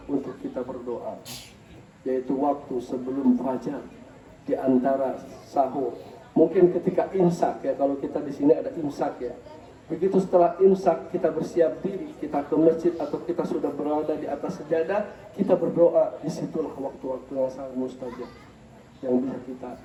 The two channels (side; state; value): both; identical; correlation 1.00